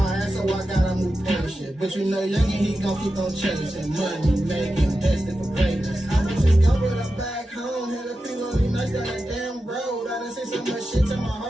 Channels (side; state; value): both; normal; correlation 0.91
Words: ass, so I gotta move patient. But you know, youngin', he gon' keep on chasing money, making, destined for greatness. I was just covered up back home, had a few lonely nights down that damn road. I done seen so much shit to my